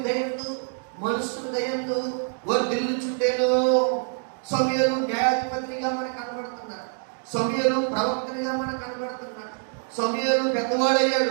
దయందు, మనుషుల దయందు వర్ధిల్లుచుండెను. సమూయేలు న్యాయాధిపతిగా మనకు కనబడుతున్నాడు. సమూయేలు ప్రవక్తనిగా మనకు కనబడుతున్నాడు. సమూయేలు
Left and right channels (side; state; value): left; silent; 55 dB below the other